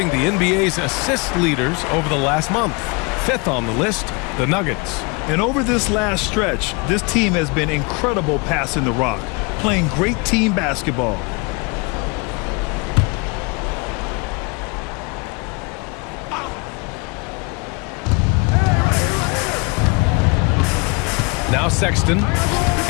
the NBA's assist leaders over the last month. 5th on the list, the Nuggets. And over this last stretch, this team has been incredible passing the rock, playing great team basketball. Now Sexton,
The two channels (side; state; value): right; quieter; 29.8 dB